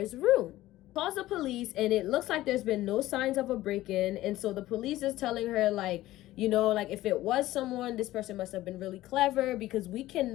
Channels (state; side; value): quieter; right; 15.9 dB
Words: room. Calls the police, and it looks like there's been no signs of a break-in. And so the police is telling her, like, you know, like, if it was someone, this person must have been really clever, because we